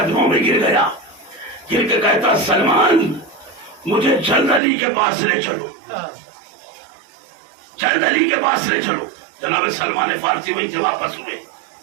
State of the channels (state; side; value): drops out; left; at 4.6 s